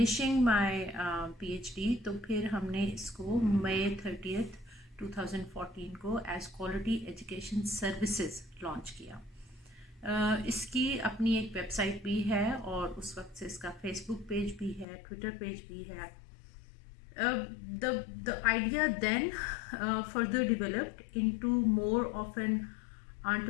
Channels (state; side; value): drops out; right; at 14.9 s